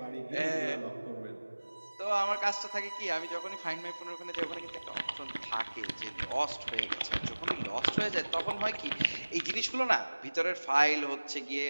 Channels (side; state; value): both; inverted; correlation -1.00